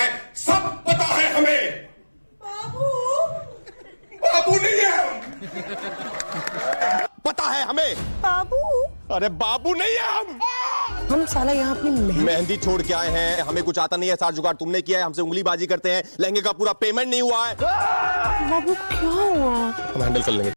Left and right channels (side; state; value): both; inverted; correlation -1.00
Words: सब पता है हमें। बाबू नहीं है हम, पता है हमें। बाबू, अरे बाबू नहीं है हम साला यहाँ अपनी मेहंदी छोड़ के आए हैं, हमें कुछ आता नहीं है, सारा जुगाड़ तुमने किया है, हमसे उंगली बाजी करते हैं, लहंगे का पूरा पेमेंट नहीं हुआ है। बाबू क्या हुआ? हम हैंडल कर लेंगे।